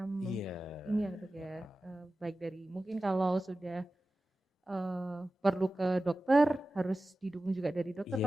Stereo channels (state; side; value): normal; both; correlation 0.95